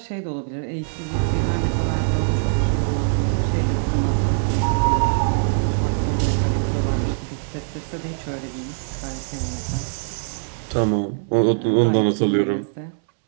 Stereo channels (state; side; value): silent; left; 64 dB below the other